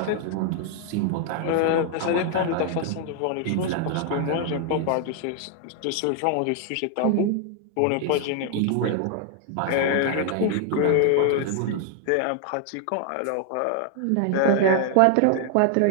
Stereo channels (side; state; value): both; different; correlation 0.00